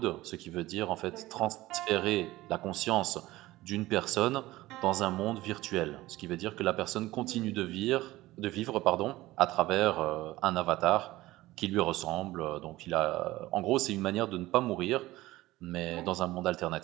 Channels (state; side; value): quieter; left; 17.7 dB